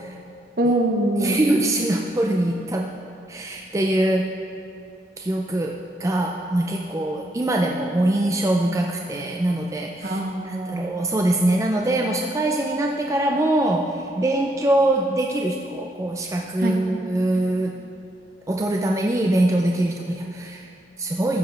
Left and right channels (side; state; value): both; normal; correlation 0.75